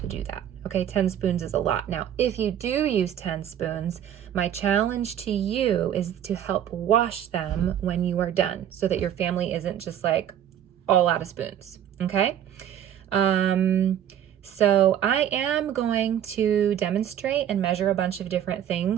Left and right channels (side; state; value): left; quieter; 10.3 dB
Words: do that. Okay, 10 spoons is a lot. Now, if you do use 10 spoons, my challenge to you is to help wash them when you are done so that your family isn't just like all out of spoons, okay? So I am going to demonstrate and measure a bunch of different